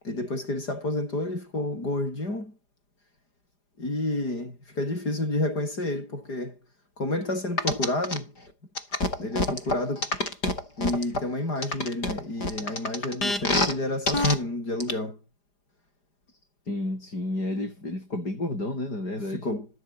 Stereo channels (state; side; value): late; right; 4.9 ms